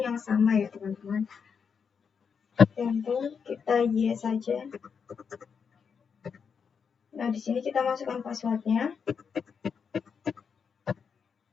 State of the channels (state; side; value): quieter; right; 6.4 dB